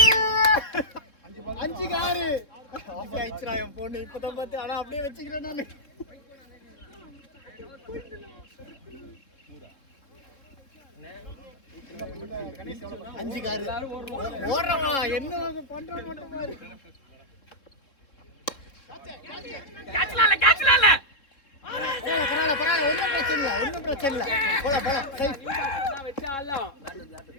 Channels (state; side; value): late; right; 3.7 ms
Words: 5 காரு ஆஃப் ஆயிடுச்சுடா என் பொண்ணு இப்பதான் பார்த்து ஆனா அப்படியே வச்சுக்கிறேன் நானு. அஞ்சு காரு ஓடுறவா என்ன பண்ற மட்டும் பாரு. கேட்ச்லால பரவாயில்ல ஒன்றும் பிரச்சனை இல்லை போலாம் சரி வச்சாலாம்